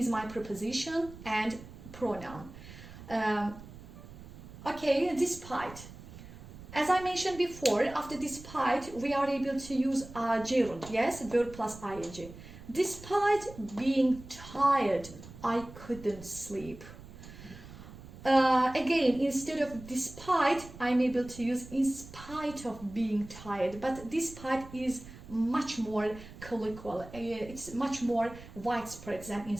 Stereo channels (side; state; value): right; noise; rumble, 16 dB below the sound